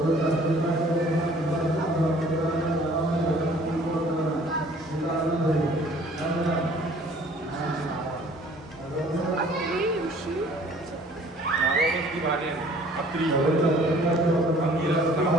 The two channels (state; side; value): normal; both; correlation 0.54